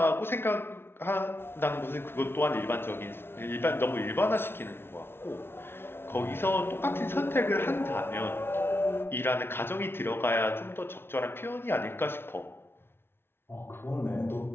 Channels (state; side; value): late; right; 0.11 ms